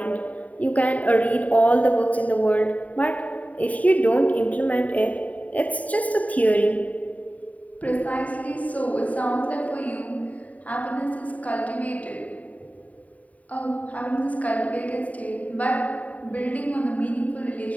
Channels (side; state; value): right; late; 0.070 ms